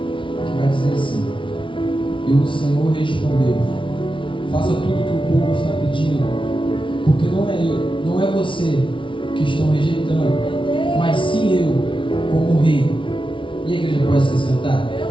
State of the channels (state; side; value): late; right; 0.25 ms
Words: Que vai dizer assim: E o Senhor respondeu: faça tudo o que o povo está pedindo, porque não é você que estão rejeitando, mas sim eu, como rei. E a igreja pode se sentar?